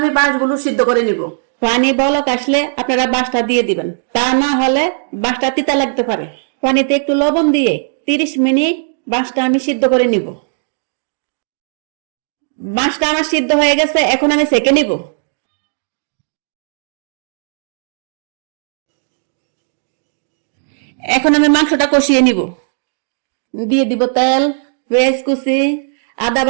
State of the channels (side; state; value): left; silent; digital silence